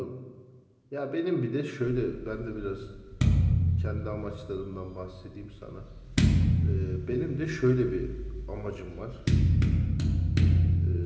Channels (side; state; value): both; identical; correlation 1.00